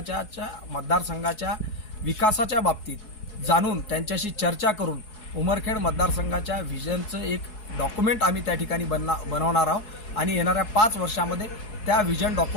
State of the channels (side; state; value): right; late; 4.7 ms